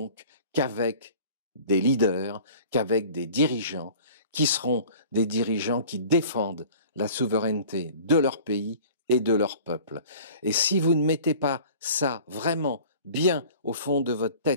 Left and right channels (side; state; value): both; inverted; correlation -0.45